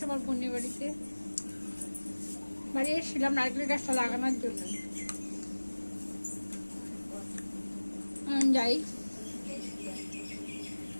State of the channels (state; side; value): inverted; both; correlation -1.00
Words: আমার বোনের বাড়িতে বাড়ি এসেছিলাম নারকেল গাছটা লাগানোর জন্য যাই